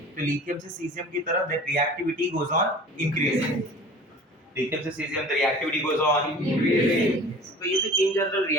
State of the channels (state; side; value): normal; both; correlation 0.43